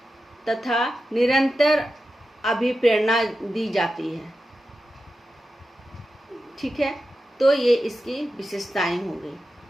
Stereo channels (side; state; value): both; normal; correlation 0.91